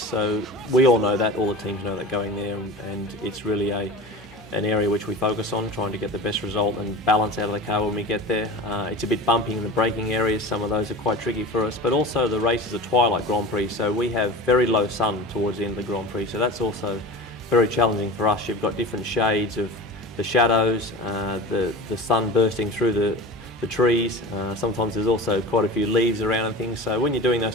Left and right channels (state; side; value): noise; left; hum, 28 dB below the sound